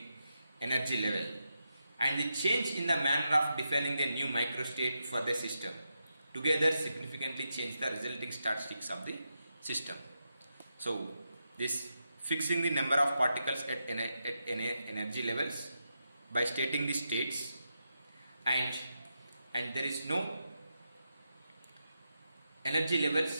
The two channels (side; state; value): both; inverted; correlation -0.86